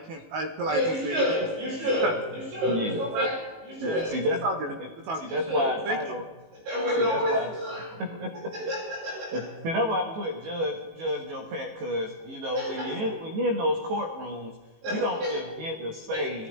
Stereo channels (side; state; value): left; late; 19 ms